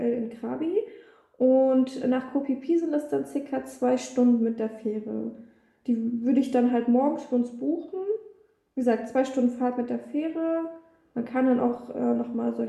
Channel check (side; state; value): both; identical; correlation 1.00